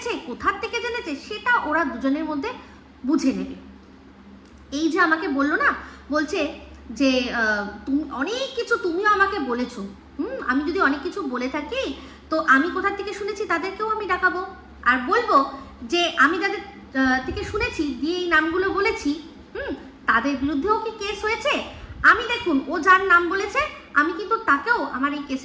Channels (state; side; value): identical; both; correlation 1.00